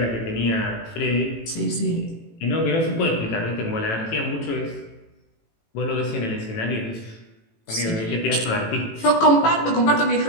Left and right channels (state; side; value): late; right; 18 ms